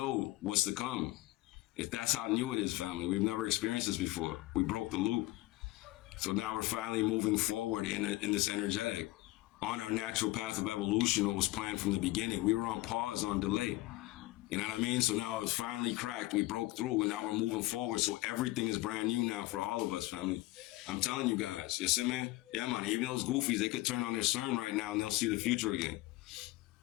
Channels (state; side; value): quieter; right; 19.0 dB